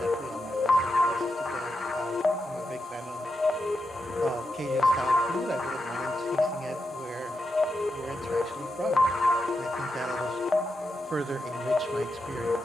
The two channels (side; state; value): both; normal; correlation 0.86